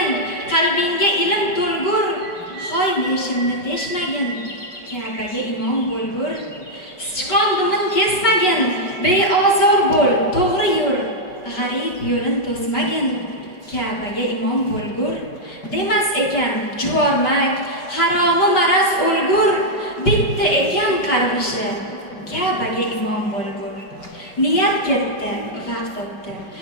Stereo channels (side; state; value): right; late; 5.4 ms